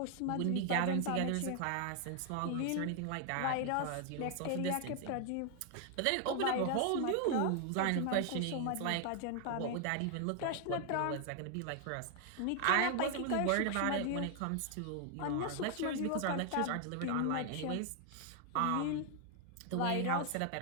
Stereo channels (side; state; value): both; different; correlation 0.00